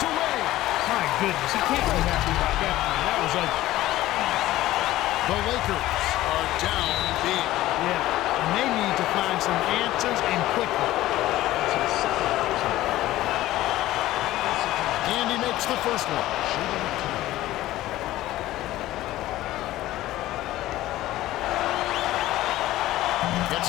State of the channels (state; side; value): quieter; right; 15.6 dB